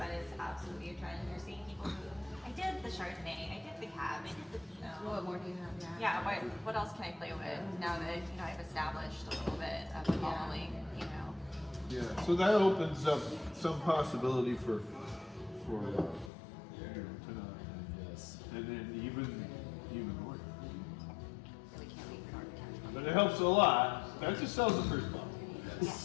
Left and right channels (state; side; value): drops out; right; at 16.3 s